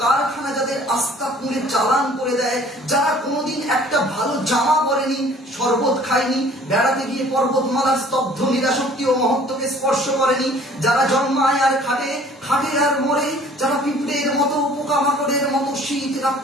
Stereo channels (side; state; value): both; normal; correlation 0.53